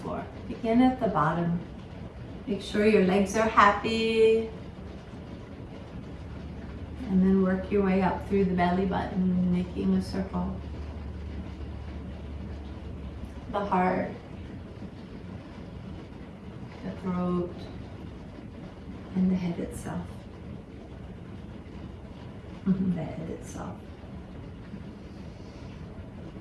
floor. Begin at the bottom. Make sure your legs are happy. And then work your way up through the belly button, making a circle. The heart, the throat, and the head itself. The head itself.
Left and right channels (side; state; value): both; identical; correlation 1.00